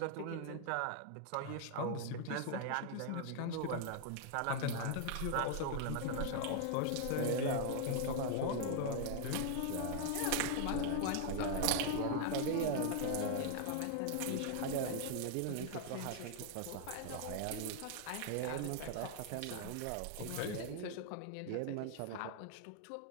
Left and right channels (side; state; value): both; different; correlation 0.00